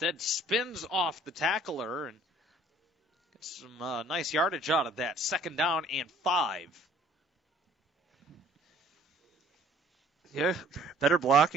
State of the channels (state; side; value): normal; both; correlation 0.56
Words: spins off the tackler and gets some nice yardage out of that. 2nd down and 5. Yeah, better